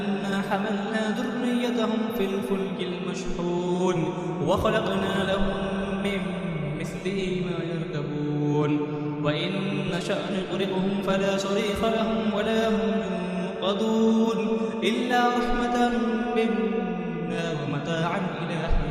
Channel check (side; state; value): both; identical; correlation 1.00